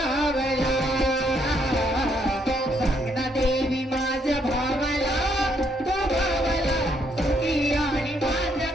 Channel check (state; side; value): normal; both; correlation 0.72